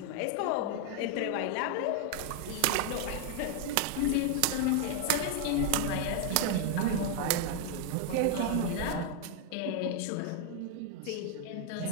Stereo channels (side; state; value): both; different; correlation 0.01